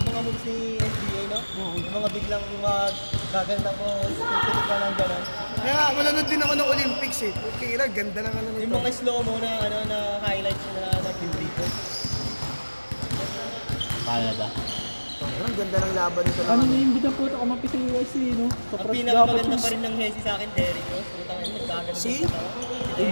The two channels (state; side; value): inverted; both; correlation -1.00